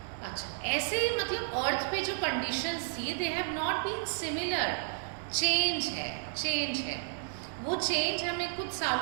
अच्छा, ऐसे ही मतलब अर्थ पे जो कंडीशंस थी they have not been similar. Change है, चेंज है। वो चेंज हमें कुछ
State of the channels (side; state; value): left; silent; digital silence